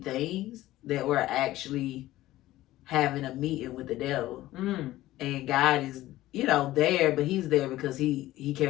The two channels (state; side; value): quieter; right; 15.9 dB